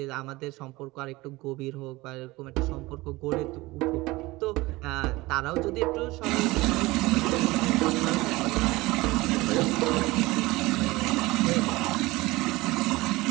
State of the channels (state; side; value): quieter; left; 20.7 dB